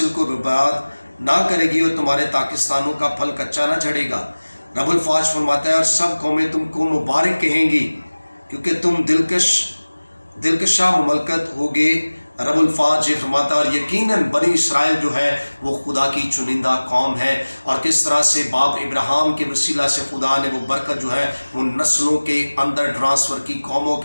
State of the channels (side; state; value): both; inverted; correlation -1.00